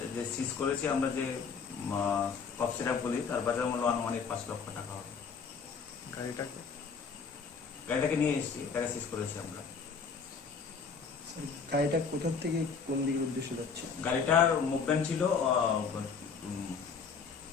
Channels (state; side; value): quieter; right; 5.6 dB